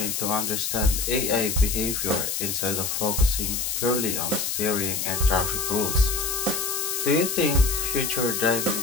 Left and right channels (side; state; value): left; noise; hiss, 1 dB below the sound